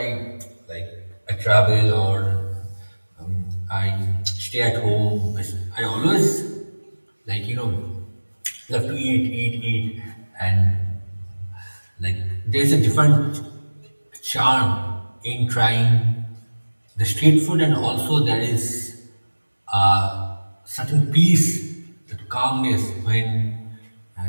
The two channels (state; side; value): inverted; both; correlation -1.00